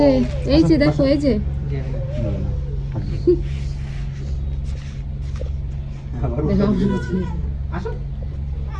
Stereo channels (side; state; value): both; identical; correlation 1.00